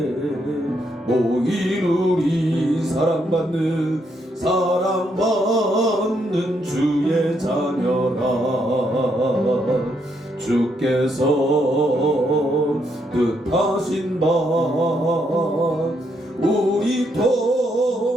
모인 우리 사랑받는 주의 자녀라. 주께서 뜻하신 바 우리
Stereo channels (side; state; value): both; normal; correlation 0.76